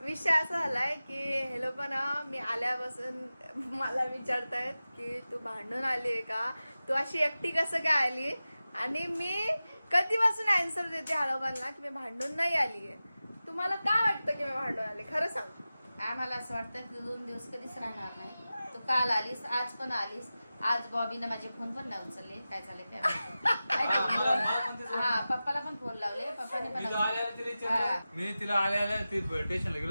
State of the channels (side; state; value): both; inverted; correlation -0.95